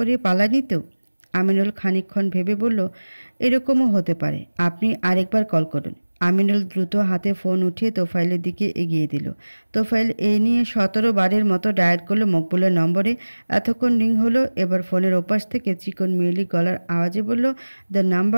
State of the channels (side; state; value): both; inverted; correlation -1.00